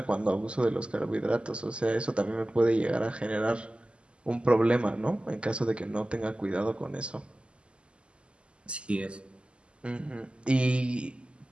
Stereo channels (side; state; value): left; late; 0.053 ms